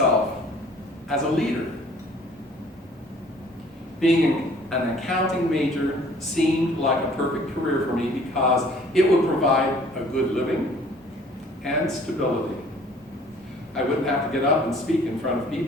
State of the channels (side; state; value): both; normal; correlation 0.54